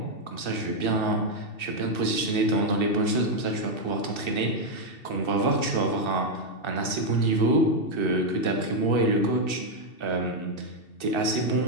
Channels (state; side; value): late; right; 2.7 ms